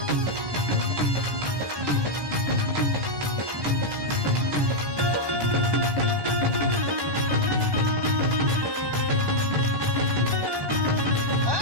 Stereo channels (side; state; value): left; late; 1.2 ms